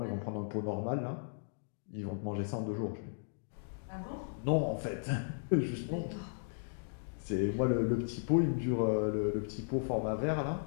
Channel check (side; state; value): right; silent; digital silence